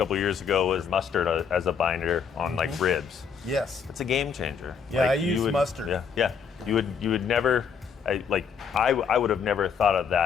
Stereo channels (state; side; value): quieter; right; 6.5 dB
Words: years ago was mustard as a binder on like ribs. Yes. It's a game changer. Yeah, like, I use mustard. Yeah. You would never, I would have never thought of